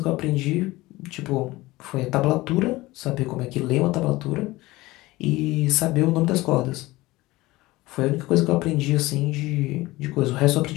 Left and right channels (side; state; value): right; quieter; 19.4 dB